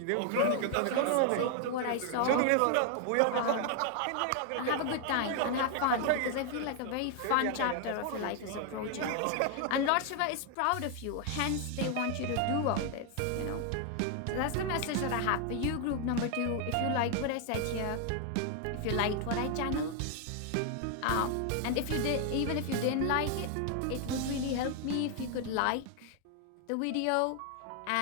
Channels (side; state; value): both; different; correlation 0.00